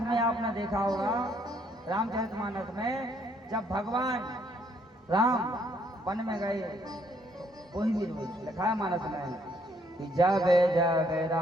में आपने देखा होगा, रामचरितमानस में जब भगवान राम वन में गए तो वही भी लिखा है मानस में कि जब जब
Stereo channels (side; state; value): both; normal; correlation 0.68